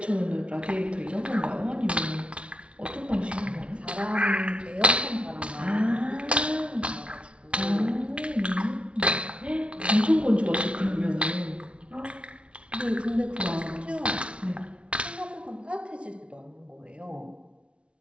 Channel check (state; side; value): late; left; 0.060 ms